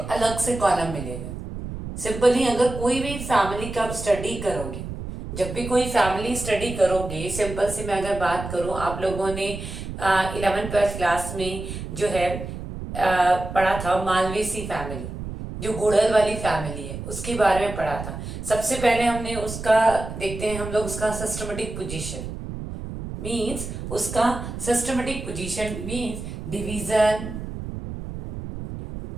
से कॉलम मिलेगा। सिंपली अगर कोई भी फैमिली का आप स्टडी करोगे, जब भी कोई फैमिली स्टडी करोगे, सिंपल से मैं अगर बात करूं, आप लोगों ने 11th-12th क्लास में जो है पढ़ा था मालवेसी फैमिली, जो गुड़हल वाली फैमिली है उसके बारे में पढ़ा था। सबसे पहले हमने उसका देखते हैं हम लोग उसका सिस्टमेटिक पोजीशन मींस उसका सिस्टमेटिक पोजीशन मींस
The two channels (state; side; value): noise; right; rumble, 8 dB below the sound